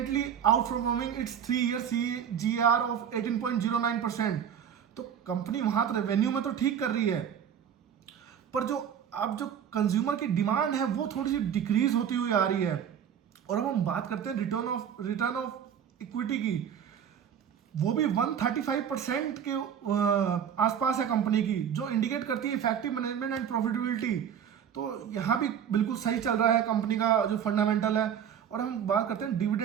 out performing it's 3-year CAGR of 18.09%। तो कंपनी वहां तो रेवेन्यू में तो ठीक कर रही है, पर जो अब जो कंज्यूमर की डिमांड है वो थोड़ी सी डिक्रीज होती हुई आ रही है। और अब हम बात करते हैं रिटर्न ऑफ इक्विटी की, वो भी 135% के आसपास है कंपनी की, जो इंडिकेट करती है इफेक्टिव मैनेजमेंट एंड प्रॉफिटेबिलिटी। तो यहाँ भी बिल्कुल सही चल रहा है कंपनी का जो फंडामेंटल है। और हम बात करते हैं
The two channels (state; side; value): quieter; left; 8.5 dB